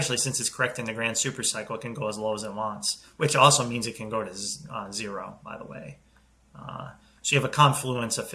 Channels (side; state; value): both; identical; correlation 1.00